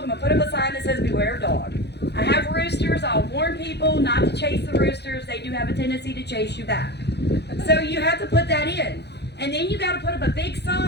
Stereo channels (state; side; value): late; right; 0.49 ms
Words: I'm going to put up a sign that says beware of dog. I have roosters, I'll warn people not to chase the roosters. They do have a tendency to chase you back. So you have to put that in. And then you got to put up a big